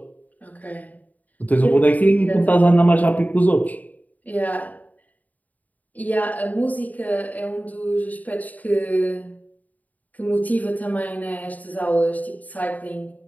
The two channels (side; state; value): right; late; 0.076 ms